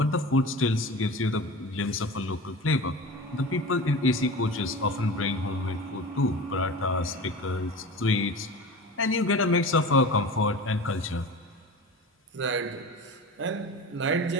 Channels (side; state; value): both; normal; correlation 0.32